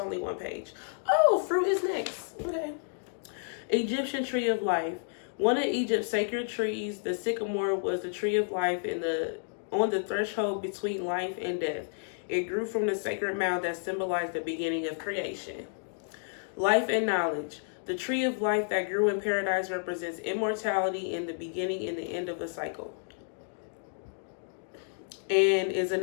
one page. Oh, fruit is next. Okay. Egyptian tree of life. One of Egypt's sacred trees, the sycamore, was the tree of life on the threshold between life and death. It grew from the sacred mound that symbolized the beginning of creation. Life and knowledge. The tree of life that grew in paradise represents immortality and the beginning and the end of the cycle, and is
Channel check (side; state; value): right; silent; digital silence